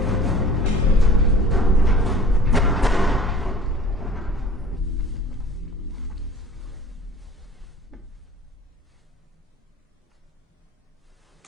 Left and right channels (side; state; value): both; normal; correlation 0.46